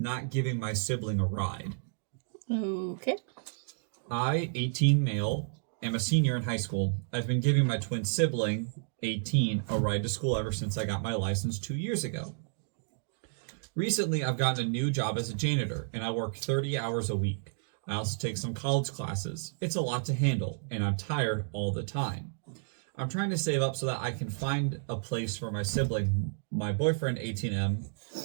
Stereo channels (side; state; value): left; silent; digital silence